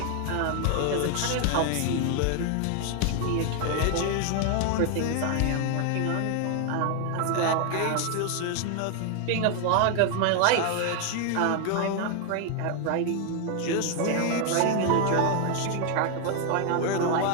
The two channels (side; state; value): both; different; correlation 0.00